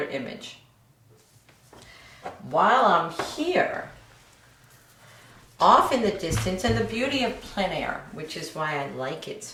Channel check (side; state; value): both; identical; correlation 1.00